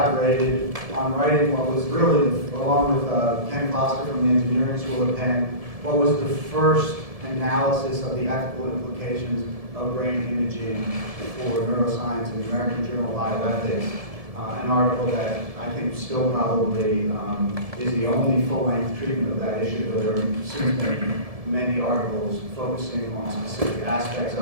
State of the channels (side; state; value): left; late; 1.7 ms